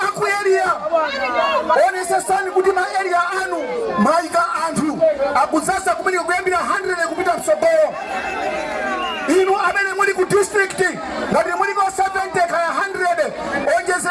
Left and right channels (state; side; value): identical; both; correlation 1.00